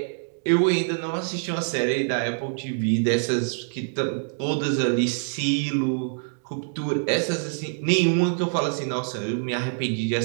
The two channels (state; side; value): silent; left; digital silence